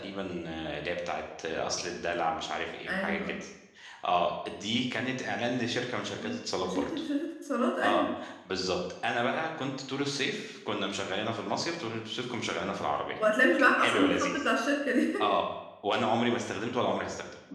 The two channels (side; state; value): both; identical; correlation 1.00